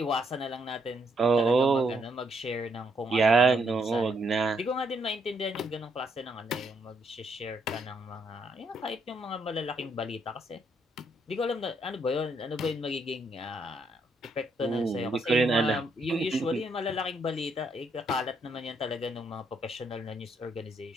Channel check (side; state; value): both; normal; correlation 0.74